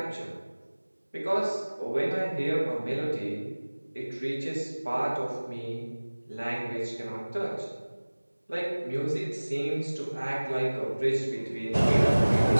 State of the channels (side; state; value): both; inverted; correlation -1.00